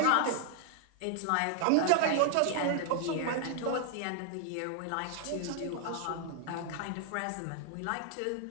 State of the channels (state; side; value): different; both; correlation 0.00